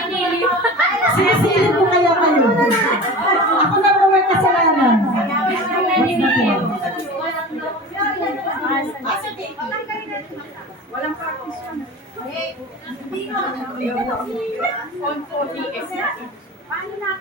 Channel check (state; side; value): normal; both; correlation 0.34